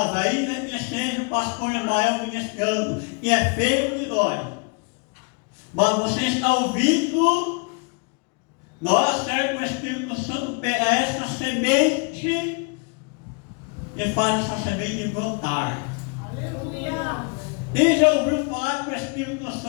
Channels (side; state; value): right; quieter; 33.9 dB